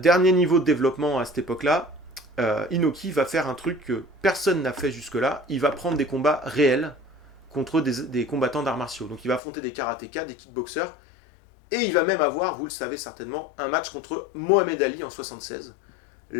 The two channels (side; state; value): right; drops out; at 9.4 s